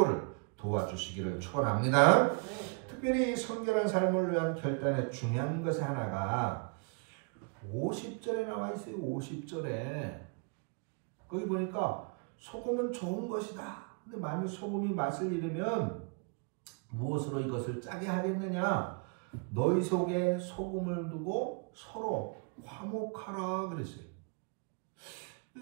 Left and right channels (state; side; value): quieter; left; 35.3 dB